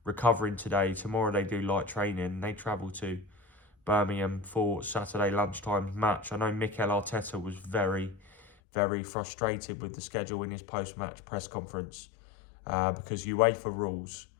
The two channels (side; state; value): right; drops out; at 8.5 s